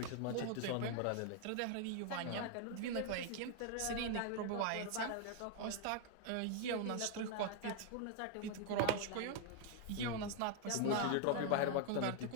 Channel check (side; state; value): both; different; correlation 0.00